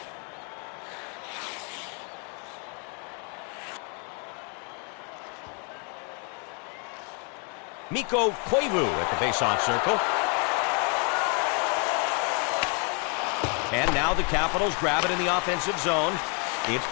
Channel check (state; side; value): quieter; right; 37.1 dB